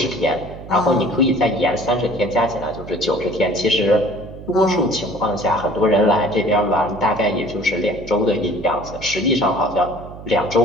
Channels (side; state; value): right; noise; hum, 14 dB below the sound